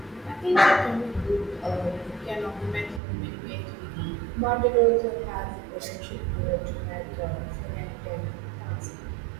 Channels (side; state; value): left; drops out; at 3.0 s